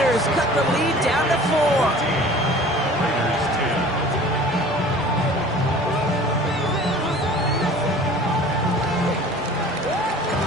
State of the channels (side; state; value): both; normal; correlation 0.46